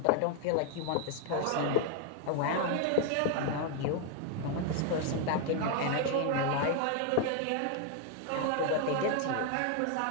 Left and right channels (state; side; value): different; both; correlation 0.01